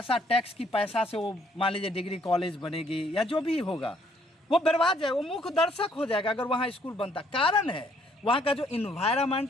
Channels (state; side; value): normal; both; correlation 0.66